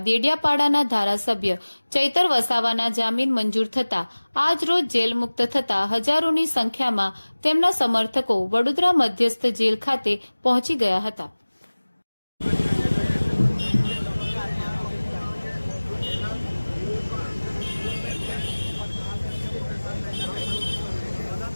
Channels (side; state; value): both; inverted; correlation -1.00